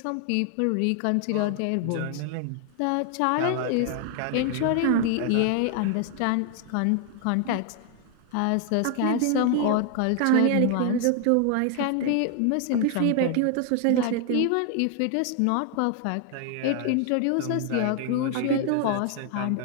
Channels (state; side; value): different; both; correlation 0.00